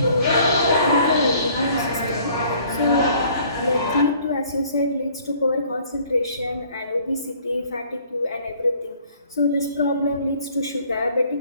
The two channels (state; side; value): inverted; both; correlation -0.57